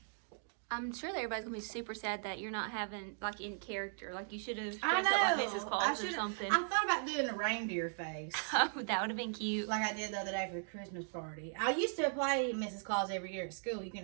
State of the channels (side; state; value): left; silent; digital silence